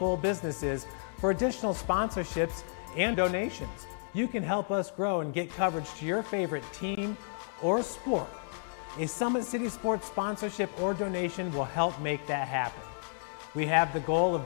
businesses for additional sponsorships and donations. You can help us grow and get coverage to your favorite team or sport. A Summit City Sports sponsorship or donation will help make that happen. We have the goal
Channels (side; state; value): right; silent; digital silence